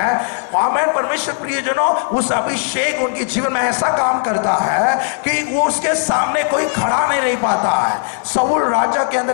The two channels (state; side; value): silent; right; 58 dB below the other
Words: आमीन। परमेश्वर प्रियजनों, उस अभिषेक उनके जीवन में ऐसा काम करता है कि वो उसके सामने कोई खड़ा नहीं रह पाता है। शाऊल राजा के